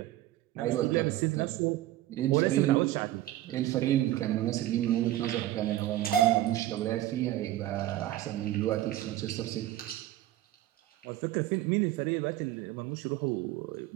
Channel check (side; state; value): left; quieter; 14.4 dB